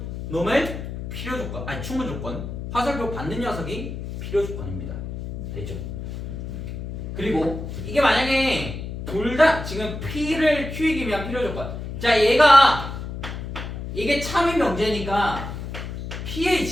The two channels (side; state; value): left; noise; hum, 7 dB below the sound